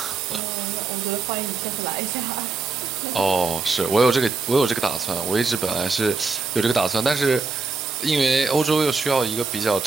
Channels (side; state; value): left; quieter; 4.2 dB